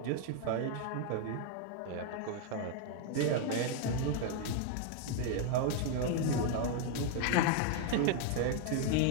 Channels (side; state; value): both; different; correlation 0.00